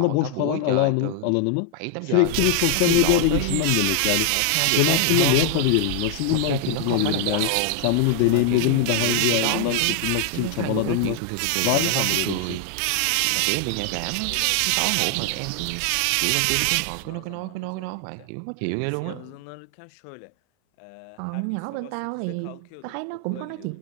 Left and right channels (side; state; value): both; different; correlation 0.00